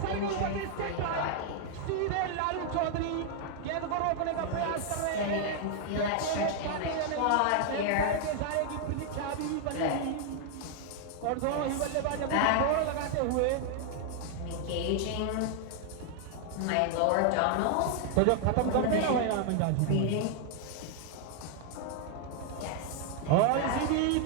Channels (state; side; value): different; both; correlation 0.00